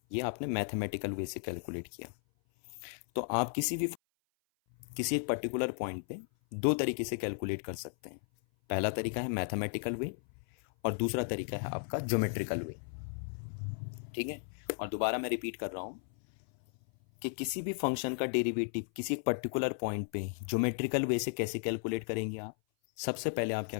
ये आपने मैथमेटिकल वे से कैलकुलेट किया। तो आप किसी एक पर्टिकुलर पॉइंट पे दो तरीके से कैलकुलेट कर सकते हैं। पहला तरीका है मैथमेटिकल वे और दूसरा तरीका है आपका ज्योमेट्रिकल वे। ठीक है, और दोबारा मैं रिपीट कर रहा हूं कि किसी भी फंक्शन का डेरिवेटिव किसी एक पर्टिकुलर पॉइंट पे ज्योमेट्रिकल वे से कैसे कैलकुलेट करेंगे आप, सबसे पहले आप क्या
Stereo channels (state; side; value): silent; right; 54 dB below the other